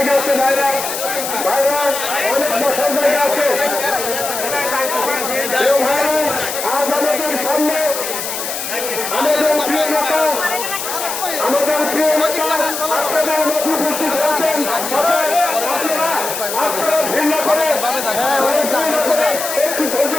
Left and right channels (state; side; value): noise; left; hiss, 5 dB below the sound